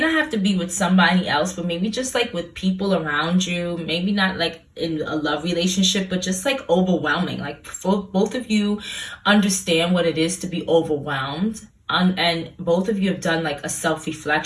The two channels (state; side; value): identical; both; correlation 1.00